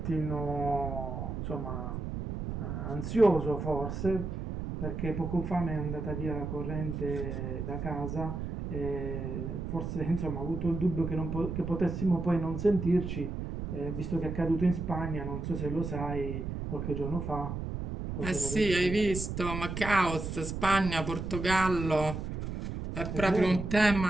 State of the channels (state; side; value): noise; right; rumble, 5 dB below the sound